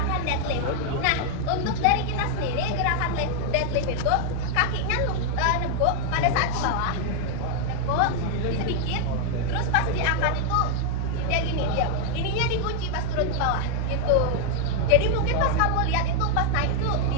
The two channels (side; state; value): both; different; correlation 0.00